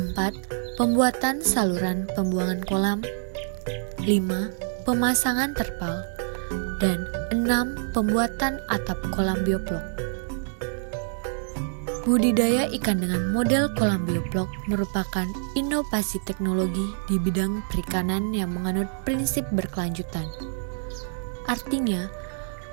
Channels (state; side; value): silent; left; digital silence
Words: Pembuatan saluran pembuangan kolam. 5. Pemasangan terpal. Dan 6. Pembuatan atap kolam bioblok. Budidaya ikan dengan model kolam bioblok merupakan inovasi teknologi di bidang perikanan yang menganut prinsip berkelanjutan. Artinya,